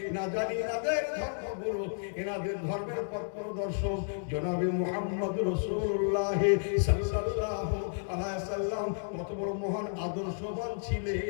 না জানি এনাদের ধর্মগুরু, এনাদের ধর্মের পথ প্রদর্শক জনাবে মুহাম্মদ রাসূলুল্লাহ সাল্লাল্লাহু আলাইহি সাল্লাম কত বড় মহান আদর্শবান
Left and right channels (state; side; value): silent; right; digital silence